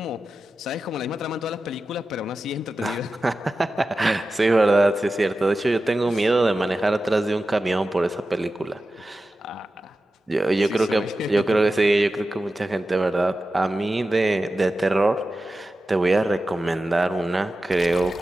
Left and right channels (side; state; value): both; normal; correlation 0.93